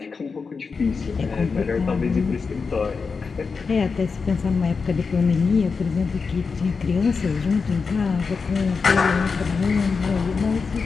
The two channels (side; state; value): right; quieter; 5.0 dB